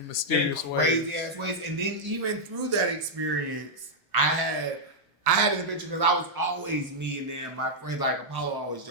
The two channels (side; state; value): both; normal; correlation -0.05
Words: mysterious ways. Crazy ass ways. And then even through that experience, I had an adventure because I was always me, and then my friends, like Apollo always